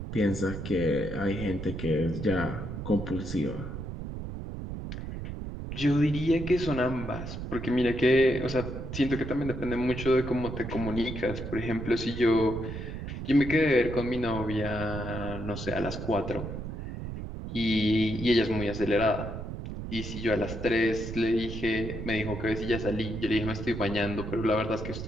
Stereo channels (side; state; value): right; noise; rumble, 7 dB below the sound